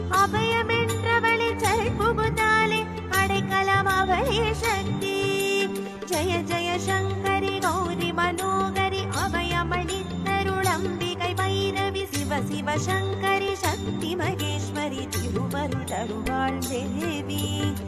அபயமென்றவளே சரண் புகுந்தாலே அடைக்கலம் அவளே சக்தி ஜய ஜய சங்கரி கௌரி மனோகரி அபயமளித்தருளம்பிகை பைரவி சிவ சிவ சங்கரி சக்தி மகேஸ்வரி திருவருள் தருவாள் தேவி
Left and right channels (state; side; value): identical; both; correlation 1.00